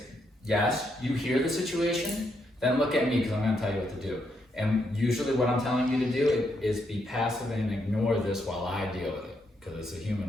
yes, you hear the situation, then look at me because I'm going to tell you what to do. And usually what I'm telling you to do is be passive and ignore this while I deal with it, because it's a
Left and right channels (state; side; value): normal; both; correlation 0.78